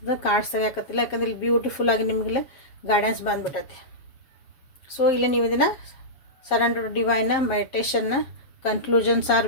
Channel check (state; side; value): late; right; 7.0 ms